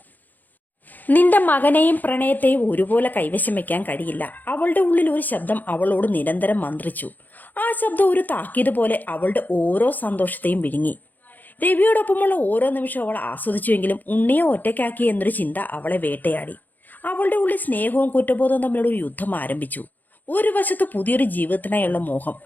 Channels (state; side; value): late; right; 0.085 ms